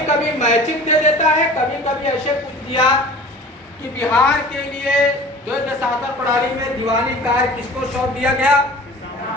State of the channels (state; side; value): normal; both; correlation 0.42